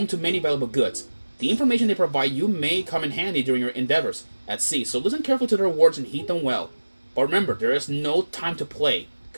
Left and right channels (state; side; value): inverted; both; correlation -1.00